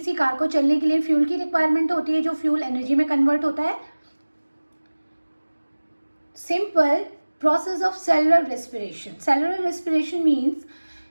कार को चलने के लिए फ्यूल की रिक्वायरमेंट होती है, जो फ्यूल एनर्जी में कन्वर्ट होता है। Simple process of cellular respiration. Cellular respiration means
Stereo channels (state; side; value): inverted; both; correlation -1.00